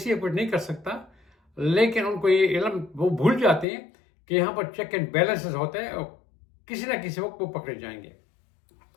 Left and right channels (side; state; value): right; drops out; at 3.7 s